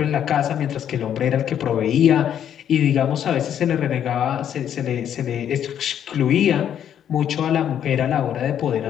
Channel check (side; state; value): right; quieter; 9.6 dB